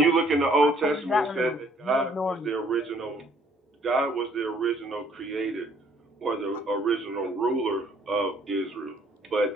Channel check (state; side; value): normal; both; correlation 0.62